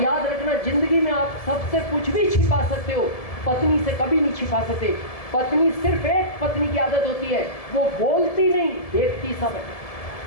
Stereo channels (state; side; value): late; right; 1.7 ms